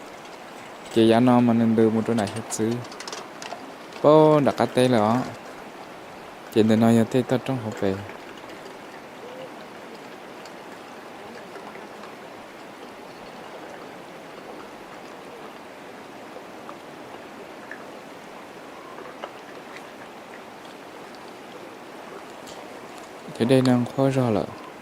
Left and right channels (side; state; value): both; identical; correlation 1.00